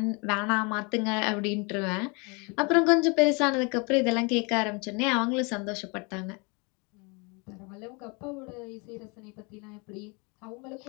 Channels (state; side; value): quieter; right; 30.8 dB